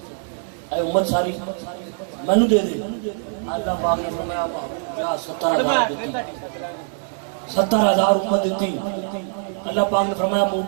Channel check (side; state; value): left; silent; 64 dB below the other